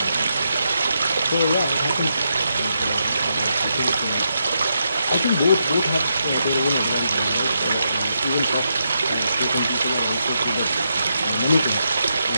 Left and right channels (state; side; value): inverted; both; correlation -0.82